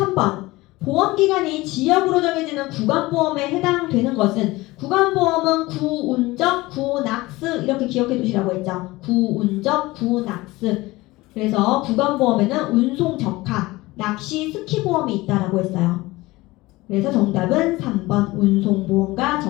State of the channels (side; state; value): right; quieter; 20.2 dB